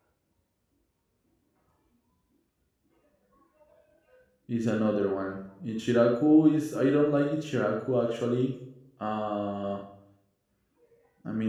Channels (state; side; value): identical; both; correlation 1.00